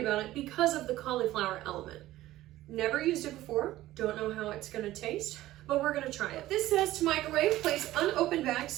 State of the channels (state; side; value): quieter; left; 15.5 dB